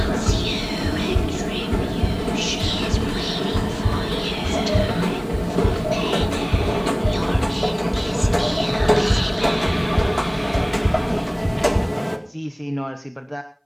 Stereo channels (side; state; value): both; identical; correlation 1.00